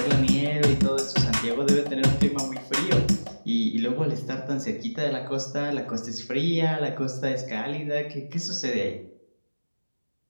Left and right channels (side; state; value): both; inverted; correlation -1.00